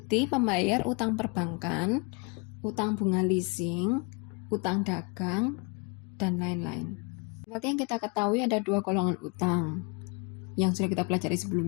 pembayar utang perbankan, utang bunga leasing, utang dagang, dan lain-lain. Seperti yang kita ketahui ada dua golongan utang yang sudah kita pelajari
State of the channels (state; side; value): quieter; right; 31.7 dB